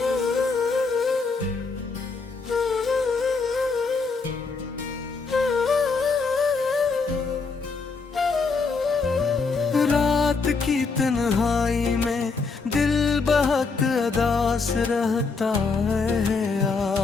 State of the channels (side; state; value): right; quieter; 4.4 dB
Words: रात की तन्हाई में दिल बहुत उदास रहता है